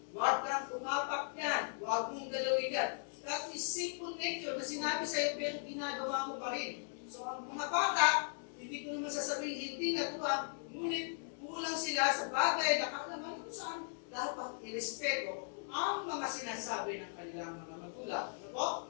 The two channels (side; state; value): right; silent; digital silence